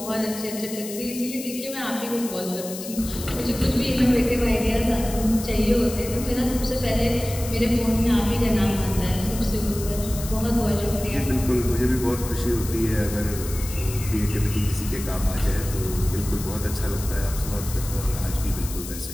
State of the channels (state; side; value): noise; left; hiss, 11 dB below the sound